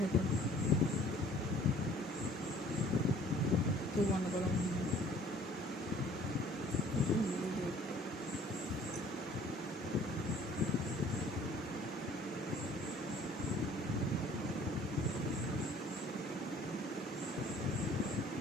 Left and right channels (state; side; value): normal; both; correlation 0.54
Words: থেকে তুই বন্ধ করো।